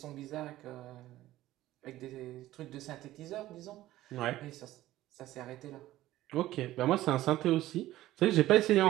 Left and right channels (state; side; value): quieter; left; 15.3 dB